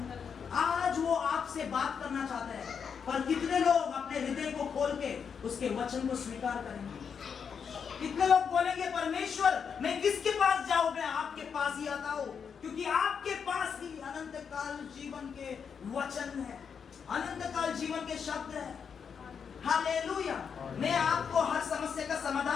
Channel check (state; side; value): quieter; right; 6.7 dB